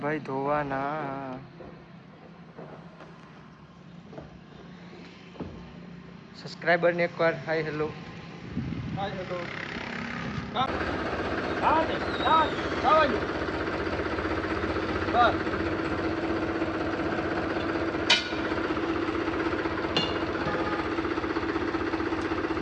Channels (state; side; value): identical; both; correlation 1.00